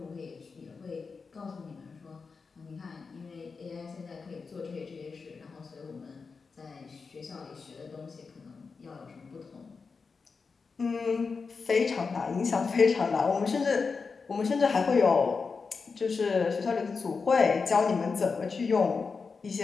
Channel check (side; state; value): right; quieter; 4.9 dB